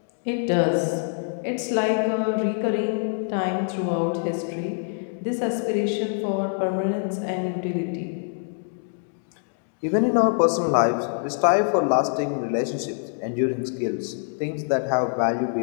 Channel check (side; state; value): right; silent; digital silence